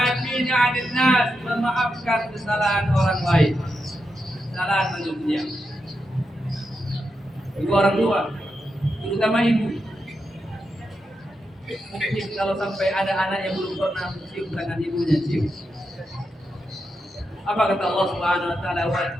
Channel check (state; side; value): normal; both; correlation 0.86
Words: 'anil nas, memaafkan kesalahan orang lain. Kesalahan manusia. Ibu orang tua, terutama ibu. Mungkin kalau sampai ada anak yang belum pernah mencium tangan ibunya, cium. Apa kata Allah Subhanahu wa taala?